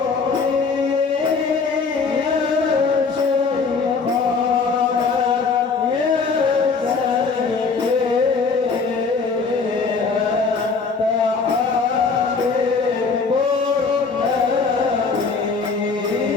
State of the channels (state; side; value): quieter; right; 4.8 dB